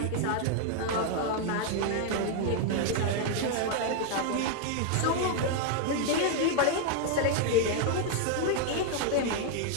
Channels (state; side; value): different; both; correlation 0.01